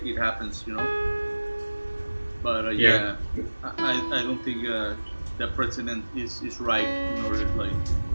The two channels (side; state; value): both; inverted; correlation -1.00